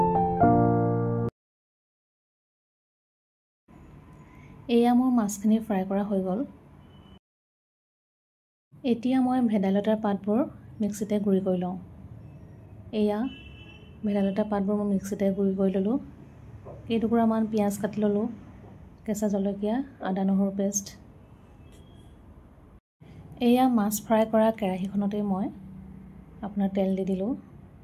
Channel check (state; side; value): identical; both; correlation 1.00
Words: এয়া মোৰ মাছখিনি ফ্ৰাই কৰা হৈ গ'ল। এতিয়া মই ভেদাইলতাৰ পাতবোৰ মিক্সিতে গুড়ি কৰি লওঁ। এয়া ভেদাইলতা পাতবোৰ মই মিক্সিতে গুড়ি কৰি ল'লোঁ। কেইটুকুৰামান পিঁয়াজ কাটি ল'লোঁ, কেঁচা জলকীয়া, আদা নহৰু পেষ্ট। এয়া মাছ ফ্ৰাই কৰা কেৰাহীখনতে মই আপোনাৰ তেল দি দিলোঁ।